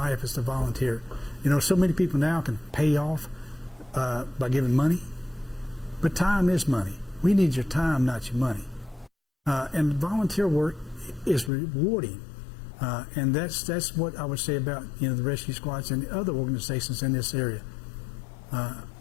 is to volunteer. You know, so many people now can pay off by giving money, but time is money. We need your time, not your money. And volunteer work is rewarding, and that's what I would say about the rescue squads and the other organizations in this area.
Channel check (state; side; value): drops out; right; at 11.5 s